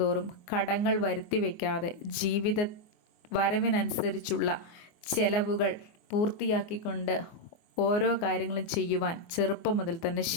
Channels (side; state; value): right; late; 24 ms